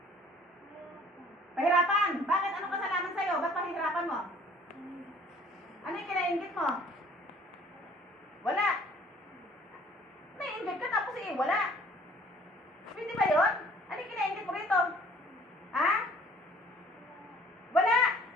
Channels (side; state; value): both; normal; correlation 0.54